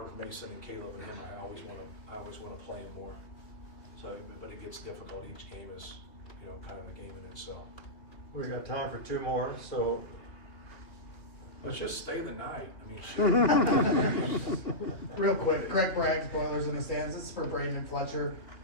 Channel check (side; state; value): right; late; 3.0 ms